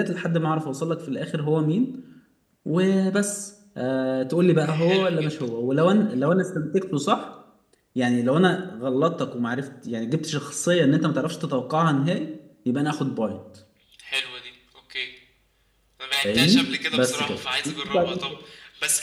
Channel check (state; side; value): identical; both; correlation 1.00